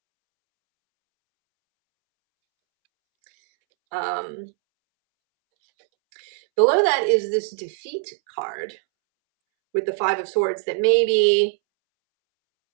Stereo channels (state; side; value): silent; left; 64 dB below the other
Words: Below that is this defeat card with the 5 of Swords that maybe,